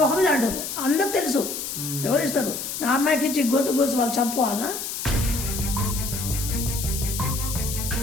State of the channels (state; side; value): noise; left; hiss, 5 dB below the sound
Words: మీద అంటారు అందరికి తెలుసు ఎవరిస్తారు నా అమ్మాయికి ఇచ్చి గొంతు కోసి వాళ్ళు చంపుకోవాలనా.